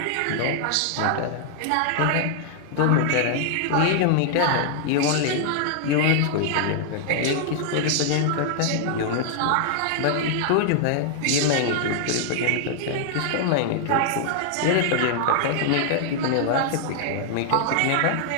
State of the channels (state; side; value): different; both; correlation -0.01